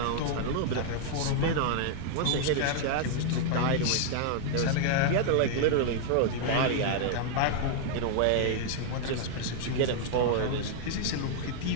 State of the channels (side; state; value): both; different; correlation 0.00